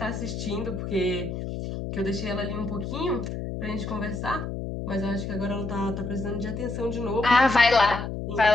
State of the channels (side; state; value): left; noise; hum, 5 dB below the sound